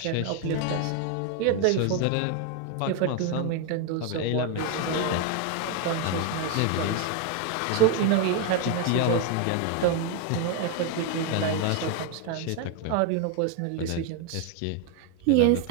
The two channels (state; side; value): different; both; correlation 0.01